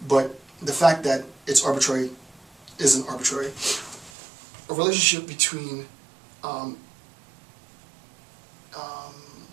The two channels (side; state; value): left; drops out; at 4.1 s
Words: but the fact that it's arbitrary isn't arbitrary. A relationship between